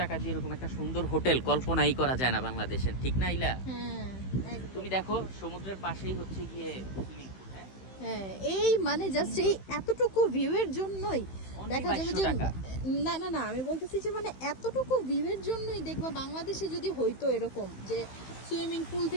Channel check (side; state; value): right; late; 15 ms